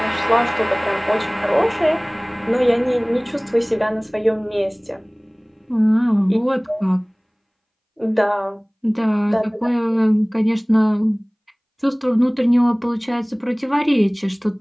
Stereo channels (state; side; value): identical; both; correlation 1.00